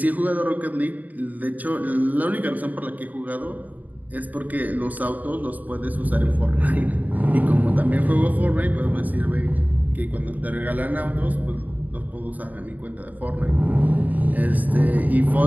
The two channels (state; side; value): late; left; 0.078 ms